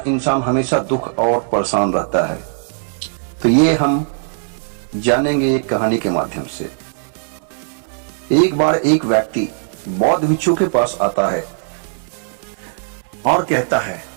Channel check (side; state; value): left; silent; 67 dB below the other